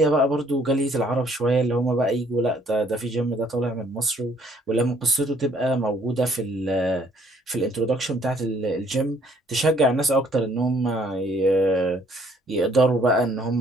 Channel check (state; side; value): normal; both; correlation 0.63